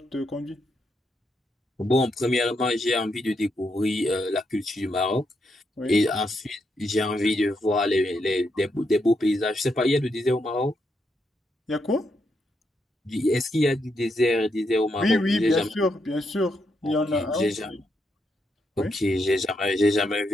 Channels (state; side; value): normal; both; correlation 0.80